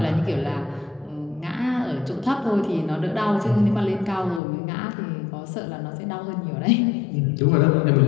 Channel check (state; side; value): drops out; right; at 4.4 s